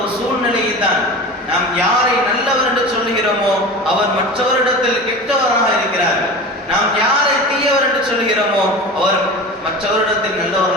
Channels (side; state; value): both; normal; correlation 0.32